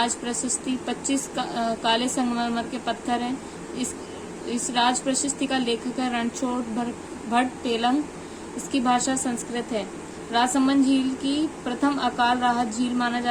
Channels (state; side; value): identical; both; correlation 1.00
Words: प्रशस्ति, 25 काले संगमरमर के पत्थर हैं। इस राज प्रशस्ति का लेखक है रणछोड़ भट्ट तेलंग। इसकी भाषा संस्कृत है। राजसमंद झील की प्रथम अकाल राहत झील माना